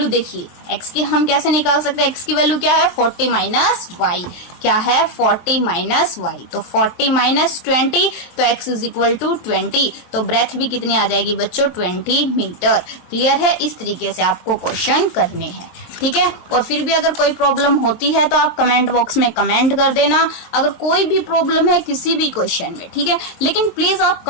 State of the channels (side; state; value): right; late; 23 ms